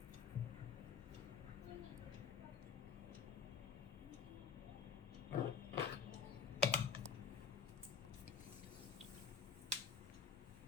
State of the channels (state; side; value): quieter; right; 6.0 dB